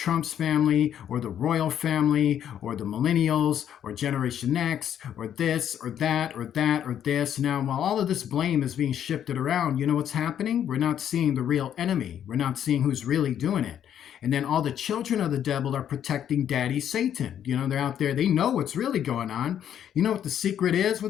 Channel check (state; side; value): quieter; right; 9.8 dB